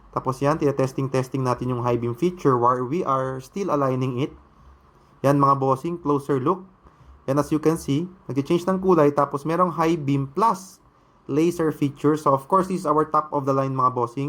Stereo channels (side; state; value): both; identical; correlation 1.00